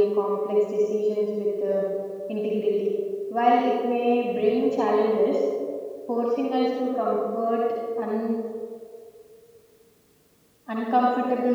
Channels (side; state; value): both; identical; correlation 1.00